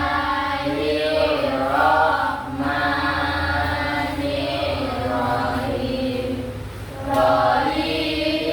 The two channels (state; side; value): identical; both; correlation 1.00